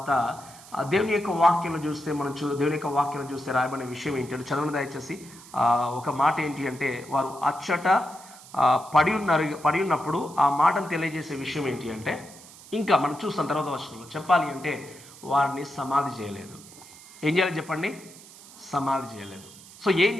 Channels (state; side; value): noise; right; hiss, 20 dB below the sound